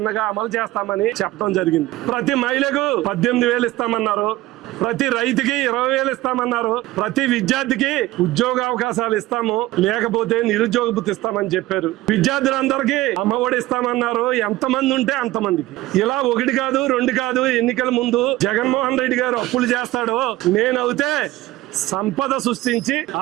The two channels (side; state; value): left; quieter; 17.2 dB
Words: అమలు చేస్తామని చెప్పడం జరిగింది. ప్రతి మహిళకు 18,000 ఇస్తామన్నారు. ప్రతి రైతుకి 20,000 ఇస్తామన్నారు. ప్రతి విద్యార్థికి ఉద్యోగ అవకాశాలు ఇస్తాము, లేకపోతే నిరుద్యోగ భృతి ఇస్తామని చెప్పారు. విద్యార్థులందరికీ అమ్మఒడి ఇస్తామన్నారు. ఎంతమంది ఉంటే అంతమందికి. ఇలా 1 కాదు 2 కాదు, ఎన్నికల ముందు జగన్మోహన్ రెడ్డి గారు అప్పులు చేస్తాడో నేనైతే సంపద సృష్టించి